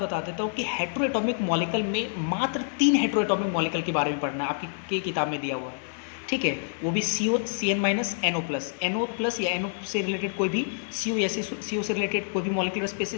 देता हूँ कि हेट्रोएटॉमिक मॉलिक्यूल में मात्र 3 हेट्रोएटॉमिक मॉलिक्यूल के बारे में पढ़ना है, आपकी किताब में दिया हुआ है। ठीक है, वो भी CO, CN-NO+, या NO से रिलेटेड कोई भी CO या CO से रिलेटेड कोई भी मॉलिक्यूलर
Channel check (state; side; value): silent; right; digital silence